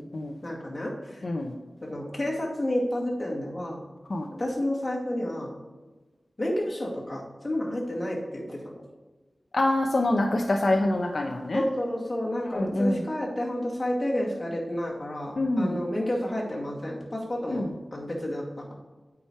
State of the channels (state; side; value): normal; both; correlation 0.97